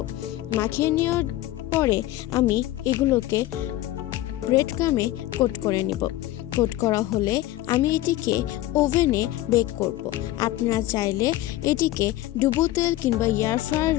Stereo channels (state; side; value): quieter; right; 15.6 dB